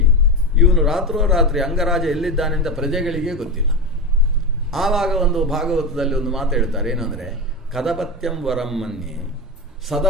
ಇವನು ರಾತ್ರೋರಾತ್ರಿ ಅಂಗರಾಜ ಎಲ್ಲಿದ್ದಾನೆ ಅಂತ ಪ್ರಜೆಗಳಿಗೆ ಗೊತ್ತಿಲ್ಲ. ಆವಾಗ ಒಂದು ಭಾಗವತದಲ್ಲಿ ಒಂದು ಮಾತು ಹೇಳ್ತಾರೆ. ಏನಂದರೆ ಕದಪತ್ಯಂ ವರಂ ಮನ್ಯೆ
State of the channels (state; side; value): normal; both; correlation 0.18